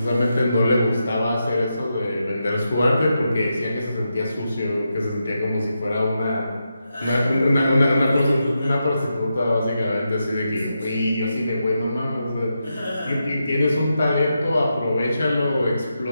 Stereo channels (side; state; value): both; inverted; correlation -0.86